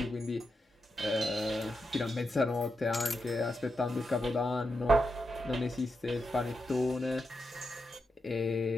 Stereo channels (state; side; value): normal; both; correlation 0.86